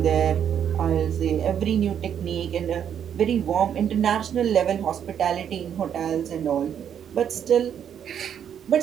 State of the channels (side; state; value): left; quieter; 8.8 dB